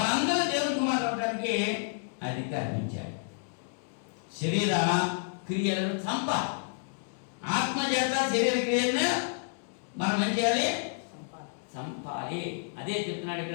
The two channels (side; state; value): right; silent; digital silence